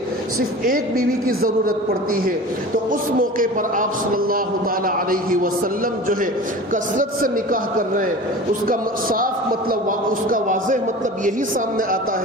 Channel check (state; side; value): normal; both; correlation 0.37